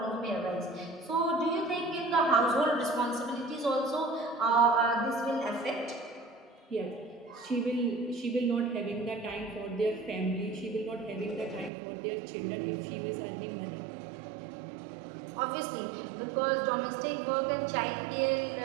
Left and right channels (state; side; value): drops out; left; at 11.7 s